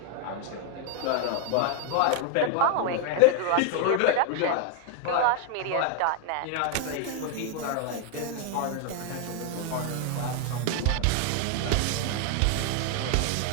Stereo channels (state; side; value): different; both; correlation 0.00